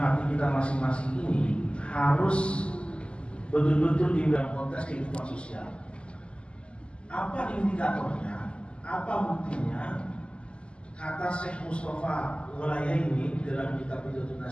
kita masing-masing ini harus betul-betul di dalam konteks kehidupan sosial. Apa indikatornya? Apa buktinya? Kata Syekh Mustafa Walayani dalam kitab Hidayatul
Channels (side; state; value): right; late; 0.053 ms